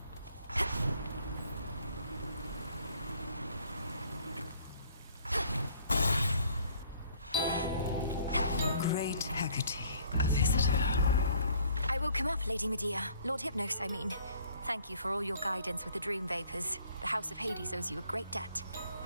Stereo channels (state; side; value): inverted; both; correlation -0.59